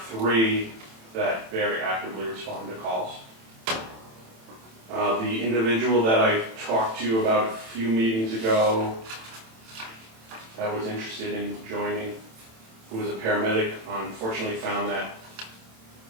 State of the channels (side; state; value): left; late; 27 ms